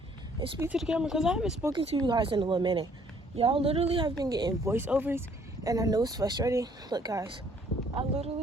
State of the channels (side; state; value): both; normal; correlation 0.62